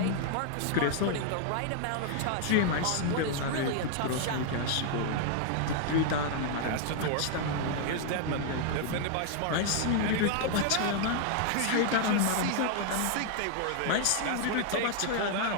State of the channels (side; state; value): both; different; correlation 0.00